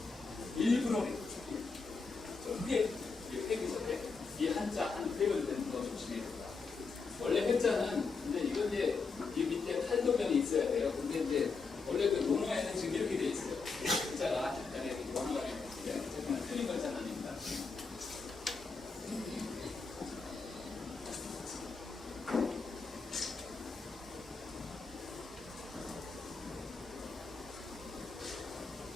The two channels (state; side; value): quieter; right; 4.6 dB